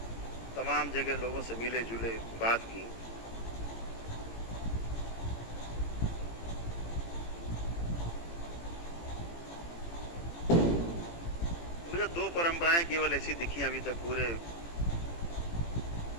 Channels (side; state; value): right; late; 18 ms